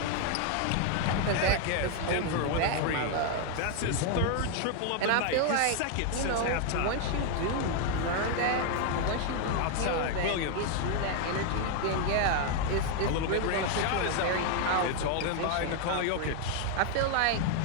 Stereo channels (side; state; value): both; different; correlation 0.00